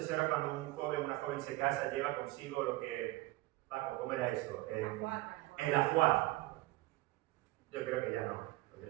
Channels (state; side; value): quieter; left; 19.1 dB